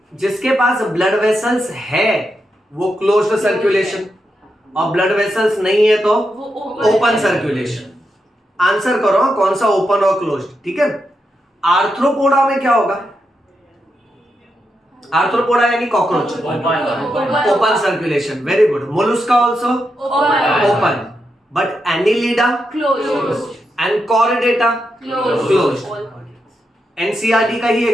जिसके पास ब्लड वेसल्स है वो क्लोज्ड सर्कुलेशन, और ब्लड वेसल्स नहीं है तो ओपन सर्कुलेशन। आंसर करो कौन सा ओपन और क्लोज्ड, ठीक है? आर्थ्रोपोडा में क्या होगा? आर्थ्रोपोडा यानी cockroach, open circulation. Very good. Mollusca also open, but annelida Closed. And chordata Closed. NCERT का ही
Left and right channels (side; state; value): both; normal; correlation 0.85